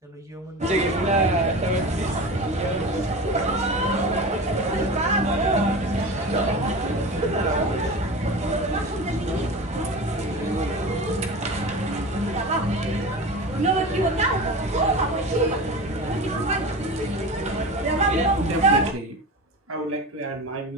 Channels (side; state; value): both; normal; correlation 0.30